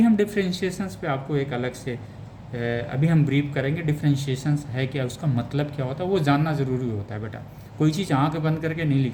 हम डिफ्रेंशिएशंस पे आपको एक अलग से अभी हम ब्रीफ करेंगे डिफ्रेंशिएशंस है क्या, उसका मतलब क्या होता है, वो जानना ज़रूरी होता है बेटा। कोई चीज़ आँख बंद करके नहीं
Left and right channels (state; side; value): identical; both; correlation 1.00